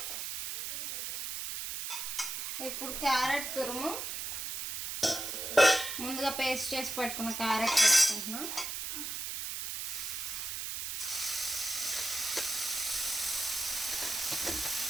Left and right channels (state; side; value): noise; right; hiss, 4 dB below the sound